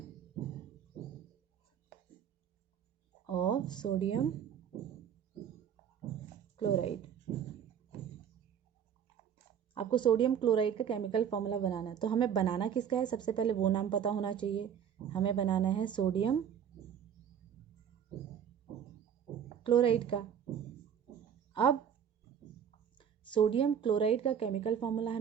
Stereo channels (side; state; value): left; quieter; 8.5 dB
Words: of sodium chloride. आपको सोडियम क्लोराइड का केमिकल फार्मूला बनाना है. तो हमें बनाना किसका है? सबसे पहले वो नाम पता होना चाहिए. हमें बनाना है सोडियम क्लोराइड का. अब सोडियम क्लोराइड का केमिकल फार्मूला